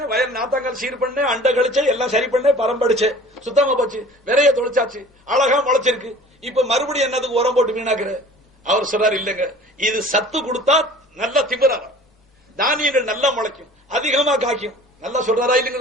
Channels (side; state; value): both; normal; correlation 0.46